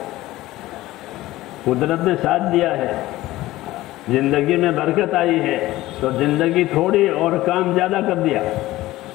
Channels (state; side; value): quieter; right; 16.9 dB